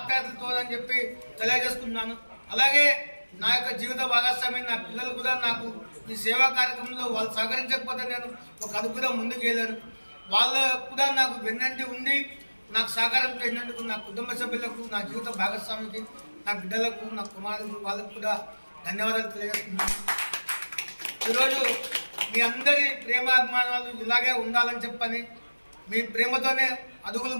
అని చెప్పి తెలియజేస్తున్నాను. అలాగే నా యొక్క జీవిత భాగస్వామి నా పిల్లలు కూడా నాకు ఈ సేవా కార్యక్రమంలో వాళ్ళు సహకరించకపోతే నేను ఒక అడుగుగా ముందుకు వెళ్ళాను. వాళ్ళు కూడా నాకు వెన్నంటి ఉండి నాకు సహకారం చేసినందుకు నా కుటుంబ సభ్యులకు, నా జీవిత భాగస్వామికి, నా బిడ్డలకు, నా కుమారులకు, వాళ్ళకు కూడా ధన్యవాదాలు తెలియజేస్తున్నాను. ఈరోజు మీ అందరి ప్రేమాభిమానాలు ఇలాగే ఉండాలని చెప్పని, మీ ప్రేమతోనే అడుగులు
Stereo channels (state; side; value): inverted; both; correlation -1.00